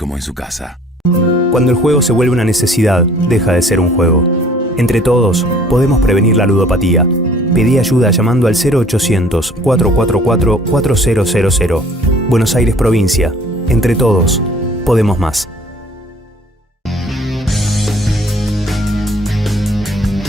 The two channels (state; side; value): normal; both; correlation 0.54